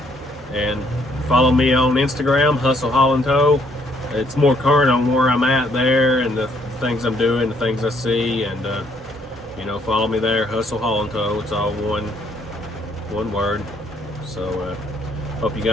and follow me on Instagram, Hustle Haul and Tow. It's more current on where I'm at there and the things I'm doing, the things I see, and you know, follow me there, Hustle Haul and Tow. It's all one word. So hope you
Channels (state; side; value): normal; both; correlation 0.67